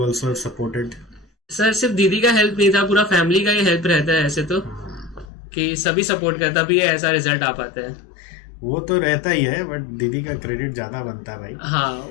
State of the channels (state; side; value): drops out; right; at 5.2 s